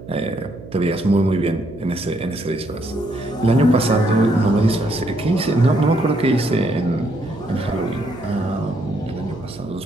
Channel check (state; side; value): noise; right; hum, 16 dB below the sound